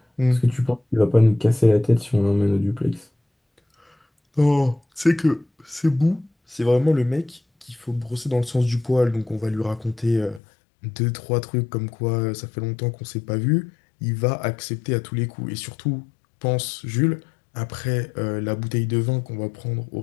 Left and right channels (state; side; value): drops out; right; at 10.4 s